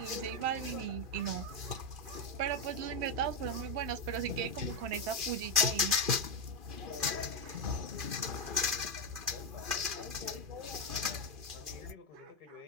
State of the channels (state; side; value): late; left; 2.4 ms